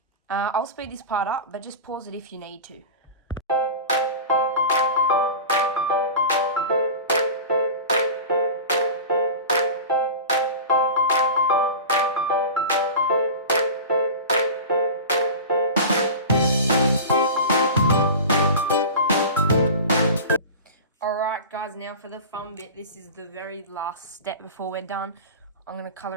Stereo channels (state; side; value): inverted; both; correlation -0.32